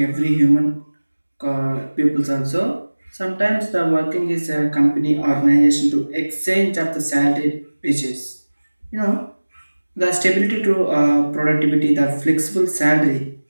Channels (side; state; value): both; inverted; correlation -1.00